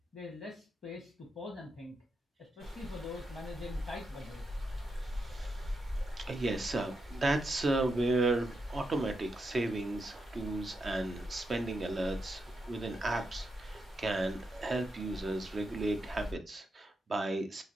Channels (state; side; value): normal; both; correlation 0.85